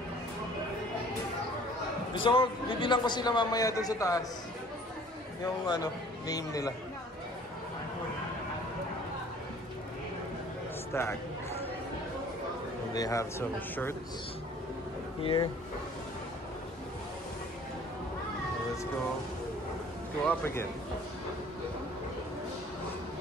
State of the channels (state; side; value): normal; both; correlation 0.52